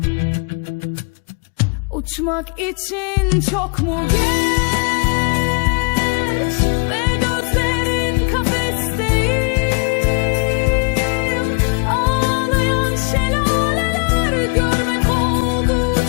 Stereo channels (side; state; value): right; quieter; 34.0 dB